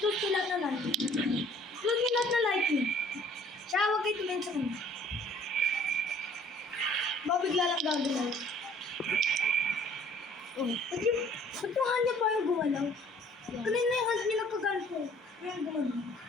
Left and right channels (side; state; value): both; normal; correlation 0.56